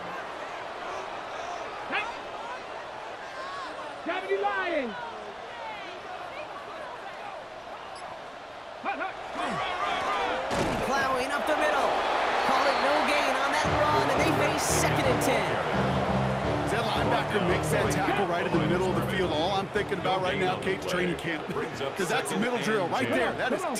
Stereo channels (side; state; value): both; identical; correlation 1.00